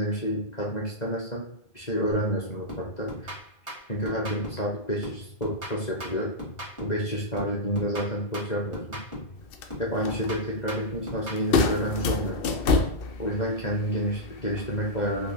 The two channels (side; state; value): right; late; 2.6 ms